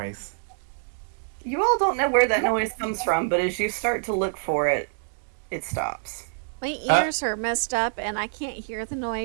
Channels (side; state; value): left; silent; digital silence